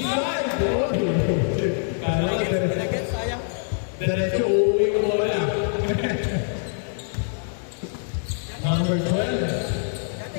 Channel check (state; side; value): silent; right; digital silence